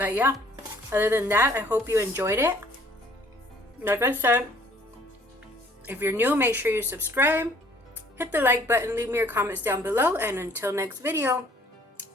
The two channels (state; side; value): normal; both; correlation 0.59